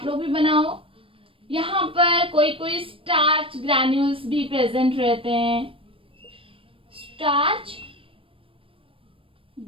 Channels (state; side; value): late; left; 0.26 ms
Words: लोग भी बनाओ। यहाँ पर कोई कोई स्टार्च ग्रैन्यूल्स भी प्रेजेंट रहते हैं, स्टार्च